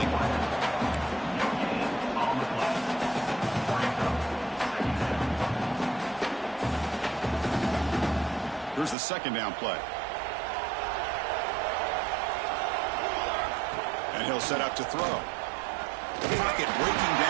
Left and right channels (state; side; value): drops out; left; at 9.0 s